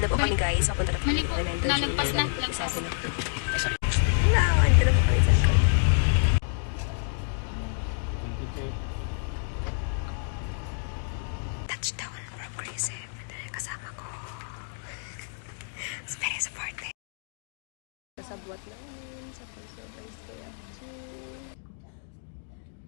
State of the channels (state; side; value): silent; right; digital silence